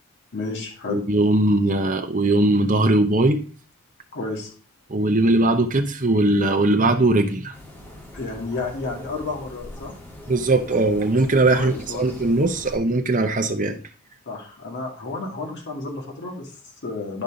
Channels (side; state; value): both; normal; correlation 0.49